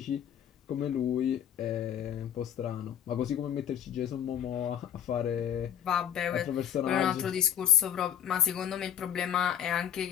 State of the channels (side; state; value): right; quieter; 9.5 dB